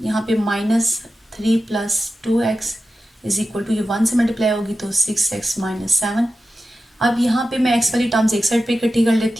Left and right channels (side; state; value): both; normal; correlation 0.92